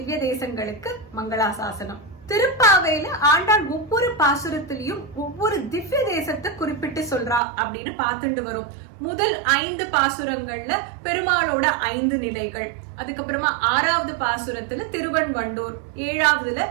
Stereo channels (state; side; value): drops out; left; at 7.4 s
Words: தேசங்களுக்கு மங்களாசாசனம். திருப்பாவையில ஆண்டாள் ஒவ்வொரு பாசுரத்திலையும் ஒவ்வொரு திவ்ய தேசத்தை குறிப்பிட்டு சொல்றா அப்படின்னு பார்த்துட்டு வரும். முதல் 5 பாசுரங்கள்ல பெருமாளோட 5 நிலைகள், அதுக்கப்புறமா 6வது பாசுரத்துல திருவன்வண்டூர், 7வதுல